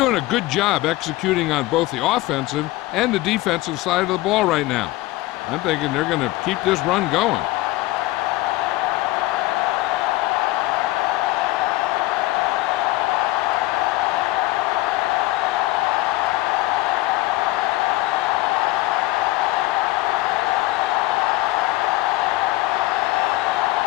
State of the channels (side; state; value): right; quieter; 18.8 dB